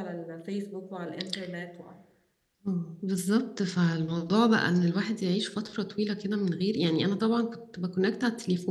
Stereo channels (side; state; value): both; identical; correlation 1.00